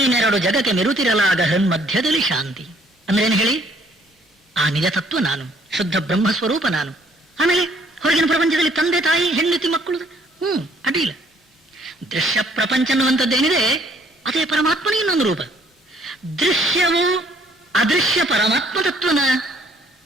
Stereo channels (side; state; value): both; normal; correlation 0.63